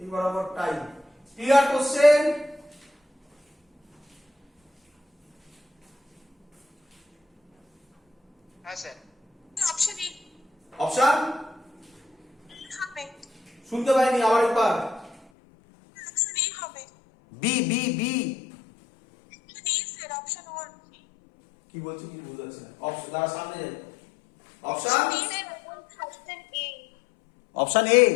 বরাবর টাইম। Clear question? হ্যাঁ স্যার। অপশন এ অপশন হবে। শুনতে পাইনি, আবার একবার। অপশন এ হবে। B B B B sir, option 1। কি বলছি কি বুঝতে পারছি না। অপশন দাঁড়া, সামনে যাই। Option B sir, option A. Option A.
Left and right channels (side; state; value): right; drops out; at 15.2 s